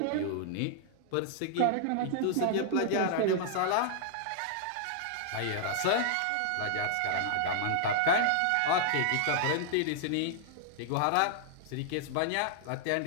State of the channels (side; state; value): both; different; correlation -0.01